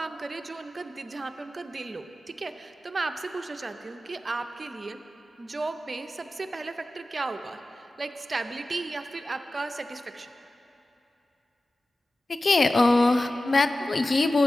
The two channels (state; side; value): normal; both; correlation 0.95